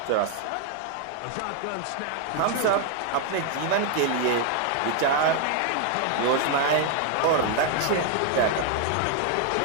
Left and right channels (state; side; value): different; both; correlation 0.00